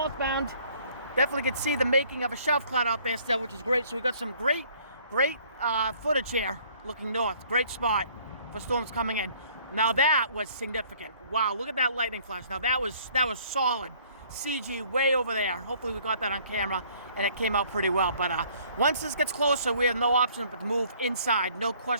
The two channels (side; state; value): both; inverted; correlation -0.58